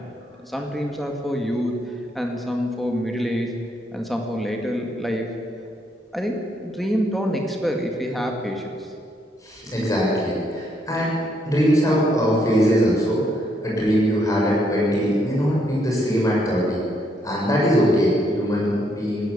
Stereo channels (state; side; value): normal; both; correlation 0.74